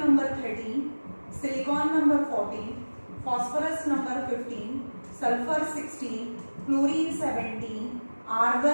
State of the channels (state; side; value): inverted; both; correlation -1.00